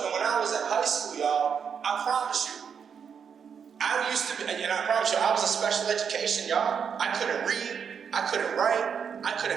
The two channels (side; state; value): left; quieter; 7.0 dB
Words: and when I was in high school, y'all, I promise you, I used to be, and I promise you, I was in special education, y'all. I couldn't read, I couldn't write, I